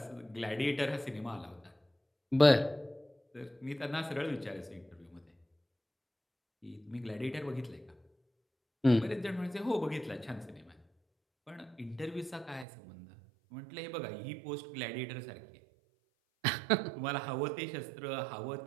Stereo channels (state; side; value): drops out; left; at 12.7 s